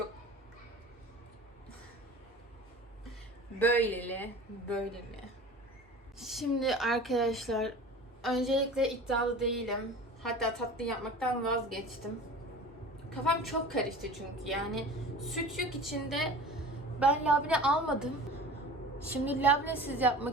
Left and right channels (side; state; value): both; normal; correlation 0.39